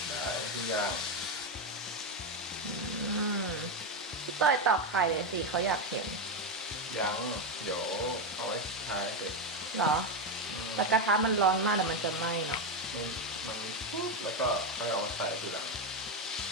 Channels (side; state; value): both; normal; correlation 0.08